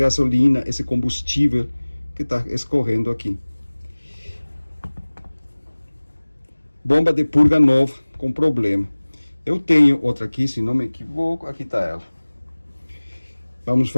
esse combustível que está escorrendo aqui. Bomba de purga nova com problema. Eu tenho outra aqui, se não me equivoco, aqui está ela. Vamos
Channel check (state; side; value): inverted; both; correlation -1.00